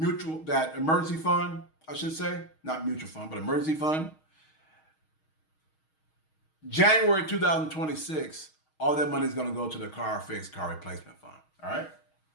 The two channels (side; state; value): right; late; 6.4 ms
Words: fund, I should say, not mutual fund, but emergency fund, January 2026, all that money is going to go to the car replacement fund. All right.